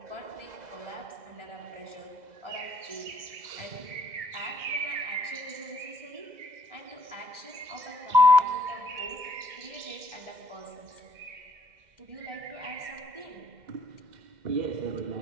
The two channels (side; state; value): left; late; 2.0 ms